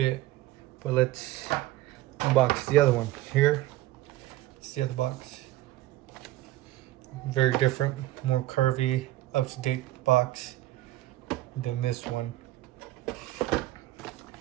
but let's unbox the other one. Here, it's the other box. Very different, more curvy, up-to-date box than this one.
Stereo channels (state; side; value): quieter; left; 16.3 dB